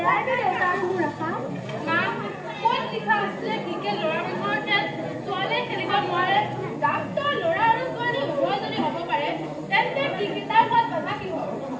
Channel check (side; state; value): both; identical; correlation 1.00